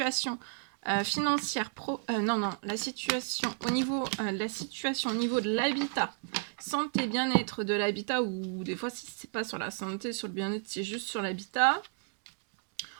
financière la situation au niveau de l'habitat, santé, bien-être de l'habitat, ou des fois si c'est pas sur la santé, sur le bien-être, c'est juste sur l'habitat.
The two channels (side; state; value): left; silent; 56 dB below the other